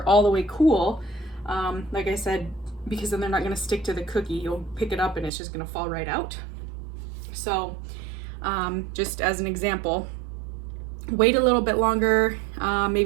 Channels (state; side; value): drops out; left; at 5.3 s